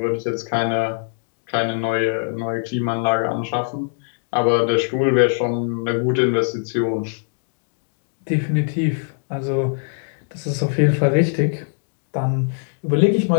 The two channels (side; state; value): right; silent; digital silence